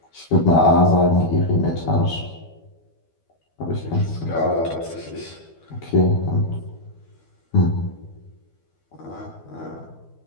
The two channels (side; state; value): right; late; 12 ms